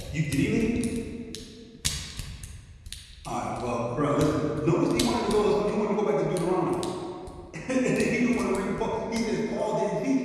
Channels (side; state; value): both; identical; correlation 1.00